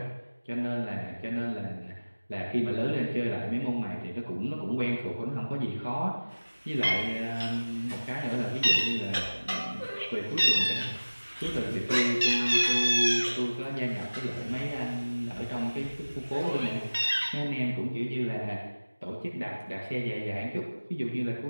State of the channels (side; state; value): both; inverted; correlation -1.00